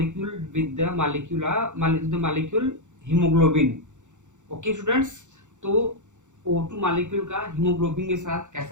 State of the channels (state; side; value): late; left; 0.85 ms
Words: with the molecule hemoglobin. Okay students, तो O2 molecule का hemoglobin के साथ